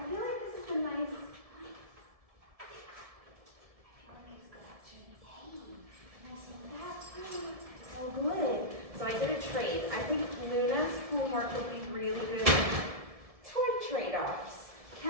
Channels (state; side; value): late; left; 1.7 ms